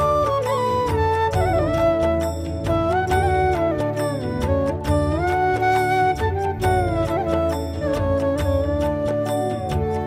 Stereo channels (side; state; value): both; identical; correlation 1.00